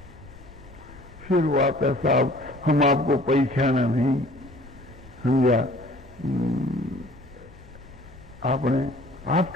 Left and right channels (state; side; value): noise; left; rumble, 21 dB below the sound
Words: फिर वो आता साहब हम आपको पहचाना नहीं, समझा, आपने